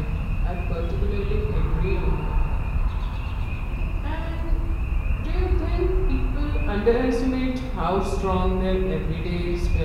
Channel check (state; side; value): identical; both; correlation 1.00